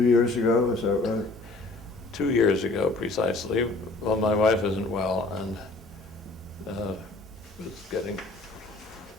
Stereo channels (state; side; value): quieter; right; 3.2 dB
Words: years ago, is that right? 2 years ago, precisely. Well, my wife isn't well and was